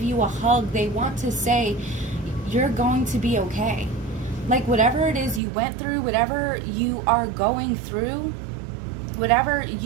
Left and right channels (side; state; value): left; drops out; at 5.4 s